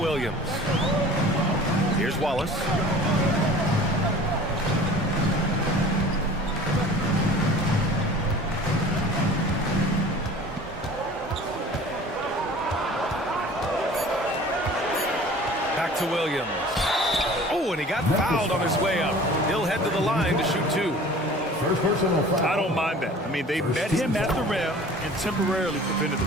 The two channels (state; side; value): normal; both; correlation 0.44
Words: Here's Wallace. Back to Williams. Oh, and he got fouled on his way up. He'll head to the line to shoot 2. I don't mind that. I mean, they met him at the rim and temporarily prevented the